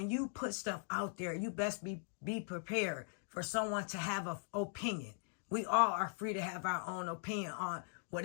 you put stuff out there, you best be prepared for someone to have an opinion. We all are free to have our own opinion on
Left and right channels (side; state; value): right; silent; digital silence